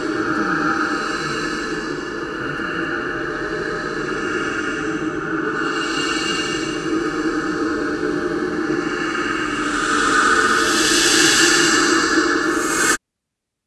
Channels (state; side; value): identical; both; correlation 1.00